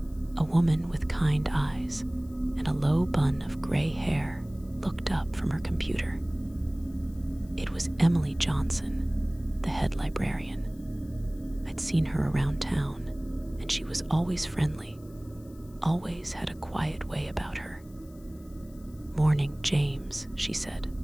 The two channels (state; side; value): noise; left; hiss, 27 dB below the sound